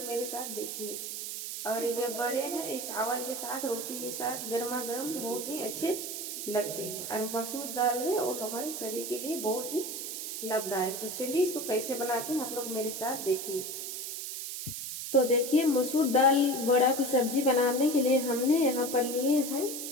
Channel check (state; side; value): noise; right; hiss, 6 dB below the sound